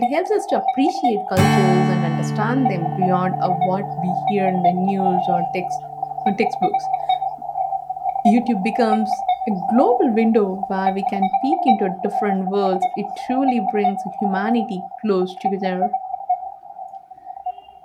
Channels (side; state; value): both; identical; correlation 1.00